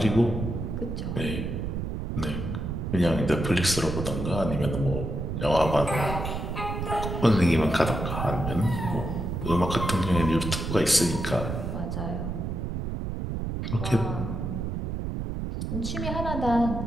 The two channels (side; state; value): right; noise; rumble, 4 dB below the sound